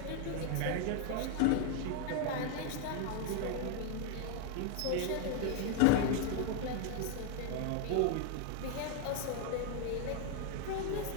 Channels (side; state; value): both; different; correlation 0.00